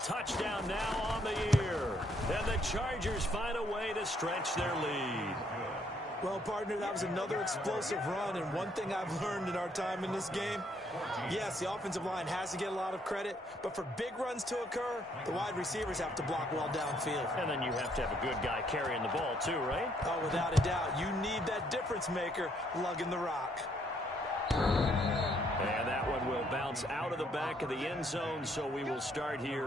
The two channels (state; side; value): normal; both; correlation 0.69